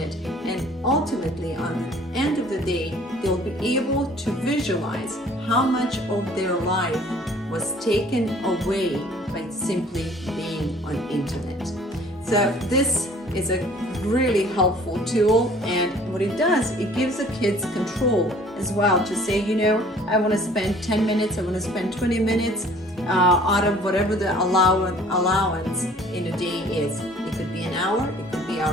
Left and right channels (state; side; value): normal; both; correlation 0.53